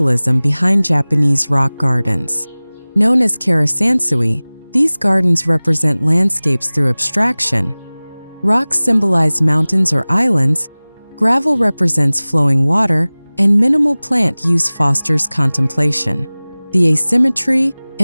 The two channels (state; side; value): inverted; both; correlation -1.00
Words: behind Japanese rock gardens. Known as Karasansui, these gardens represent landscapes through abstraction. Rocks symbolize mountains or islands, gravel represents flowing water, and minimal plant use fosters contemplation. The asymmetry,